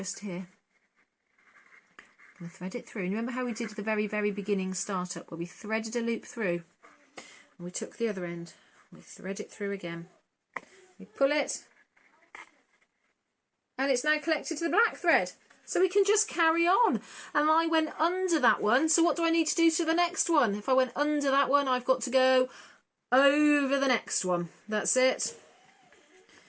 here. Thread it through. And remember how we did the very, very beginning startup where we threaded a loop through and we took the other end, we thread it through again, we pull it, and it's now collected to the black thread. So we can just carry on. And I went under that one. So what do I need to do to the next one? If I went under that one, I've got to go over the next one. That's it.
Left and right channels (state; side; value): identical; both; correlation 1.00